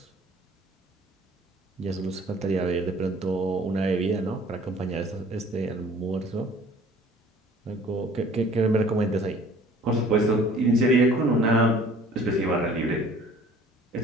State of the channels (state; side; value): normal; both; correlation 0.52